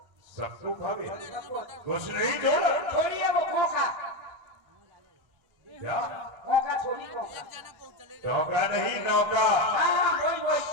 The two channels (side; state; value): left; late; 1.3 ms